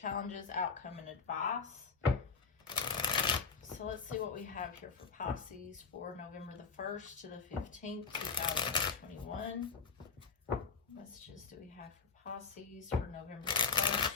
outcome, and advice. So let's see what we have here for Pisces for November the 1st to the 15th, 2021. What messages do we have for Pisces for November the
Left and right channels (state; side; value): quieter; right; 5.1 dB